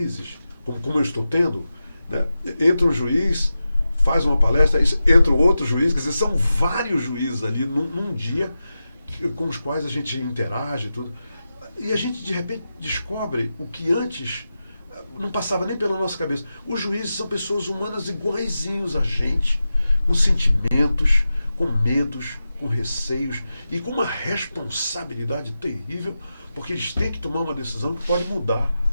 como eu estou tendo, né, entra um juiz, faz uma palestra, entra outro juiz, quer dizer, são vários juízes ali num dia com os quais a gente interage, tudo, e a gente de repente descobre o que antes não passava nem pela nossa cabeça. Os juízes são pessoas humanas iguaizinhos a gente, com sentimentos, com medos, com receios e com uma responsabilidade terrível, porque eles têm que tomar uma decisão que pode mudar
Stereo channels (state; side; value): inverted; both; correlation -0.92